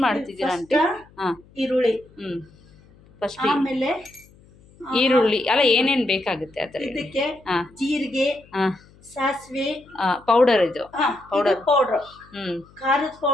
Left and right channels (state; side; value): noise; left; hum, 27 dB below the sound